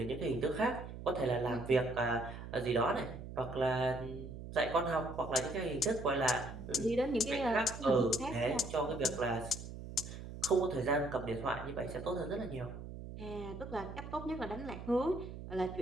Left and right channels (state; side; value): noise; right; hum, 10 dB below the sound